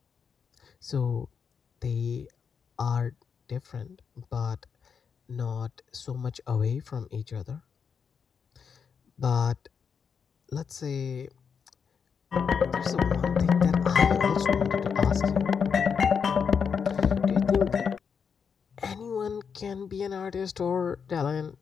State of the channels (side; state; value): right; quieter; 6.4 dB